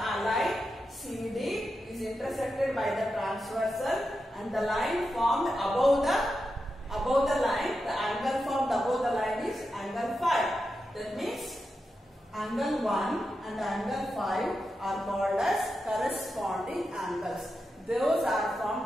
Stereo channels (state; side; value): normal; both; correlation 0.89